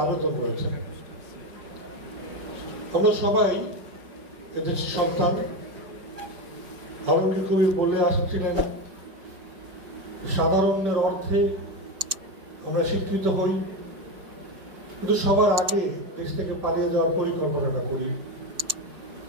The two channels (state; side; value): late; left; 5.2 ms